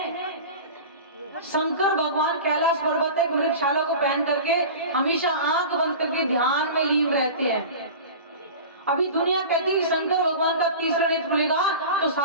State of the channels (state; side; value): inverted; both; correlation -0.34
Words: शंकर भगवान कैलाश पर्वत एक वृक्षशाला को पहन करके हमेशा आंख बंद करके ध्यान में लीन रहते हैं। अभी दुनिया कहती है कि शंकर भगवान का तीसरा नेत्र खुलेगा तो